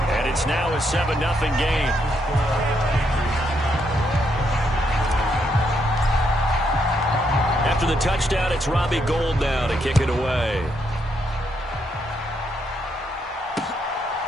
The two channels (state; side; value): normal; both; correlation 0.77